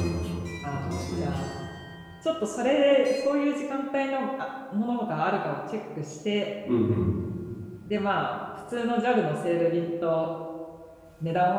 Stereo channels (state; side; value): identical; both; correlation 1.00